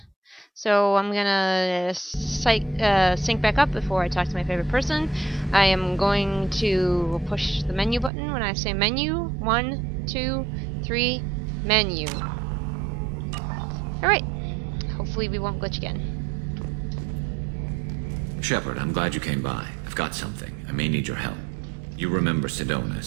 So I'm gonna sync back up before I talk to my favorite person. I am going to push the menu button when I say menu. 1, 2, 3, menu. Alright. Hopefully we won't glitch again. Shepard, I'm glad you came by. I've got something. I may need your help. You remember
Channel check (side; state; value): left; drops out; at 8.1 s